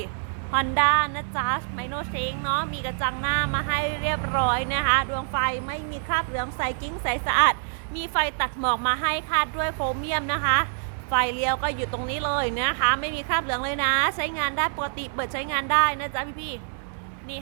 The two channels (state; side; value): silent; left; digital silence